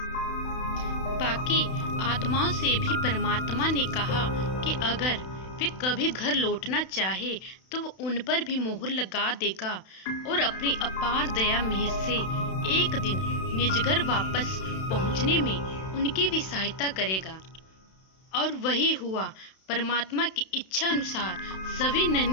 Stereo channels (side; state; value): right; late; 32 ms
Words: बाकी आत्माओं से भी परमात्मा ने कहा कि अगर वे कभी घर लौटना चाहे तो वो उन पर भी मोहर लगा देगा और अपनी अपार दया मेहर से एक दिन निज घर वापस पहुंचने में उनकी भी सहायता करेगा। और वही हुआ। परमात्मा की इच्छा अनुसार सभी